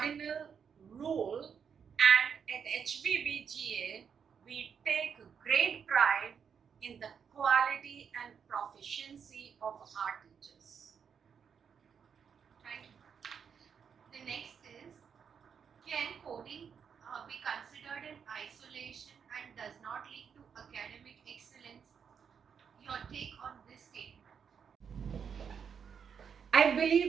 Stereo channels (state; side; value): quieter; left; 7.0 dB